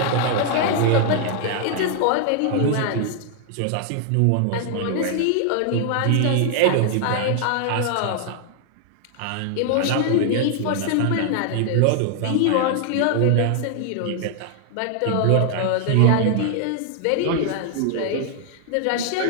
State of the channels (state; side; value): different; both; correlation 0.00